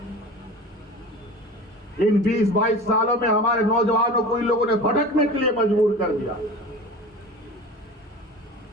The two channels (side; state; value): both; normal; correlation 0.36